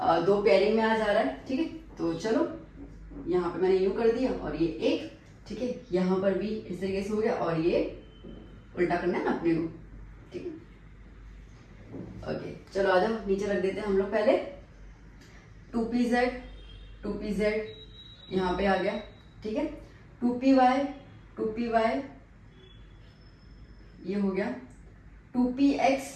2 पेयरिंग में आ जा रहा है। ठीक है, तो चलो यहाँ पे मैंने यूं कर दिया और ये एक, ठीक है, यहाँ पर भी इस तरीके से हो गया और ये उल्टा करना है ना अपने को। ठीक है, ओके, चलो आ जाओ, नीचे रख देते हैं हम लोग पहले। 2pz यहाँ पे आ गया। ठीक है, 2py ये हो गया,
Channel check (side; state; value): both; identical; correlation 1.00